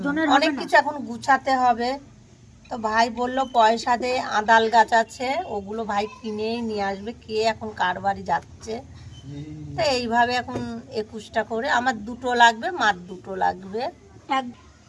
অনেক কিছু এখন গুছাতে হবে। তো ভাই বললো পয়সা দে, আদাল গাছ আছে, ওগুলো ভাই কিনেই নিয়ে আসবে। কে এখন কার বাড়ি যাচ্ছে? তো এইভাবে এখন 21টা করে আমার দুটো লাগবে, মার দুটো লাগবে।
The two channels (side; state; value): both; identical; correlation 1.00